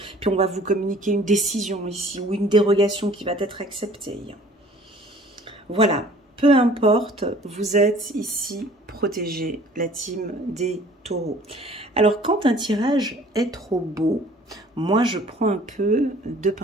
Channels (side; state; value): both; normal; correlation 0.52